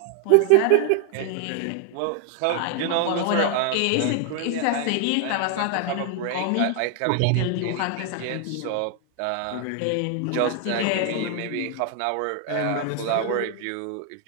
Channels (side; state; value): both; different; correlation 0.00